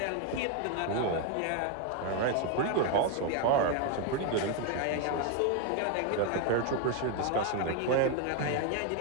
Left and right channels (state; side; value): different; both; correlation 0.01